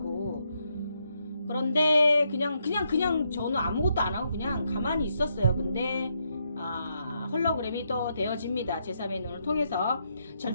그런데 그냥 저는 아무것도 안 하고 그냥 가만히 있었어요. 근데 홀로그램이 또 되어집니다. 제3의 눈을 통해서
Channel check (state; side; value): inverted; both; correlation -0.78